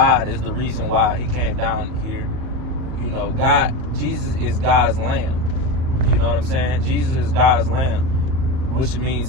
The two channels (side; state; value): left; late; 39 ms